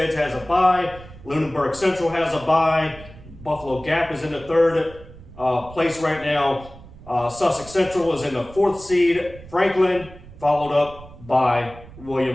has a bye. Lunenburg Central has a bye. Buffalo Gap is in the 3rd place right now. Sussex Central is in the 4th seed. Franklin, followed up by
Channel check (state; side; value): noise; right; rumble, 18 dB below the sound